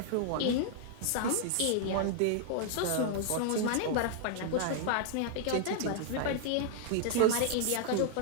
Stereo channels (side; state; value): both; different; correlation -0.01